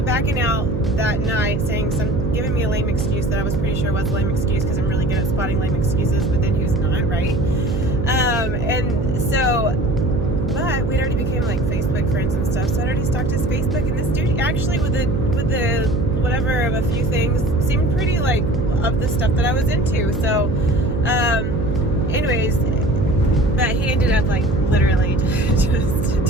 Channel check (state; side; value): noise; right; hum, 2 dB below the sound